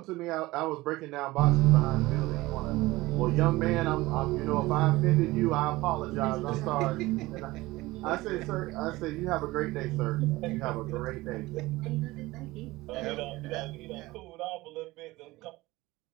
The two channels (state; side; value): quieter; left; 19.6 dB